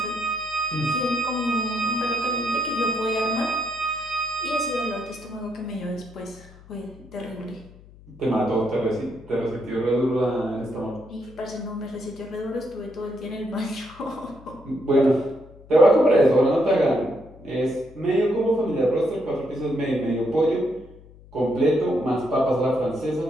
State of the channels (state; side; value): noise; left; hum, 22 dB below the sound